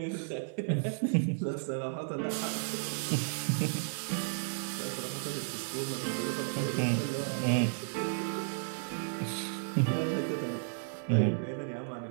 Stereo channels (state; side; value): silent; left; 56 dB below the other